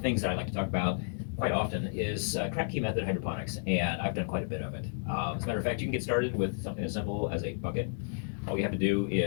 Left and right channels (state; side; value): silent; right; digital silence